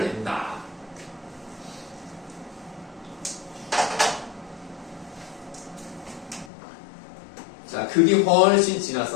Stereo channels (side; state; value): right; drops out; at 6.5 s